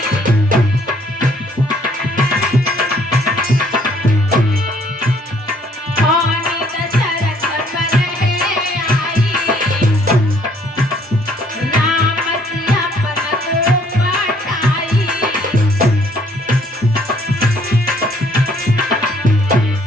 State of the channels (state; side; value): normal; both; correlation 0.63